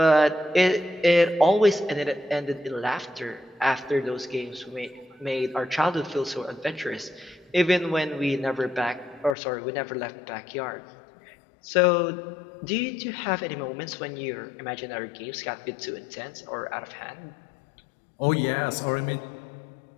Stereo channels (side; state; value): right; drops out; at 9.3 s